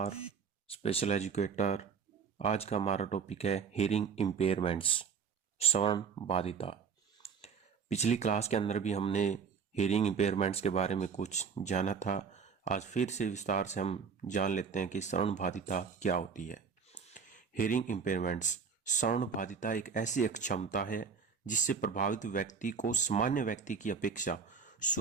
special educator. आज का हमारा टॉपिक है हियरिंग इम्पेयरमेंट्स, श्रवण बाधिता। पिछली क्लास के अंदर भी हमने हियरिंग इम्पेयरमेंट्स के बारे में कुछ जाना था। आज फिर से विस्तार से हम जान लेते हैं कि श्रवण बाधिता क्या होती है। हियरिंग इम्पेयरमेंट्स, श्रवण बाधिता एक ऐसी अक्षमता है जिससे प्रभावित व्यक्ति को सामान्य व्यक्ति की अपेक्षा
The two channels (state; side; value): quieter; left; 6.2 dB